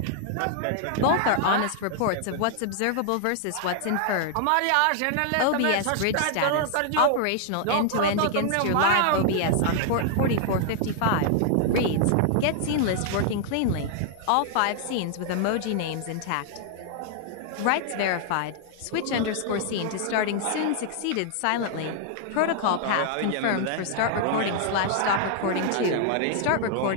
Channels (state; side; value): different; both; correlation 0.00